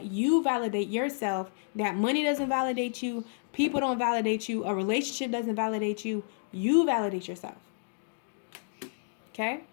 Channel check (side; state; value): right; silent; digital silence